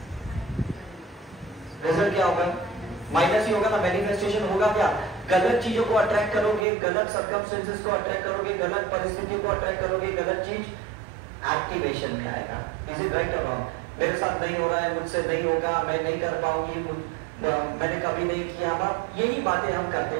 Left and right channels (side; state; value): left; drops out; at 6.7 s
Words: रिजल्ट क्या होगा? माइनस ही होगा ना। मैनिफेस्टेशन होगा क्या? गलत चीजों को अट्रैक्ट करोगे, गलत सर्कमस्टेंसेस को अट्रैक्ट करोगे, गलत परिस्थितियों को अट्रैक्ट करोगे, गलत चीज एक्टिवेशन में आएगा। इज इट राइट और रॉन्ग? मेरे साथ नहीं हो रहा है, मुझसे नहीं होगा, मैं नहीं कर पाऊंगी, मैंने कभी नहीं किया, यही बातें हम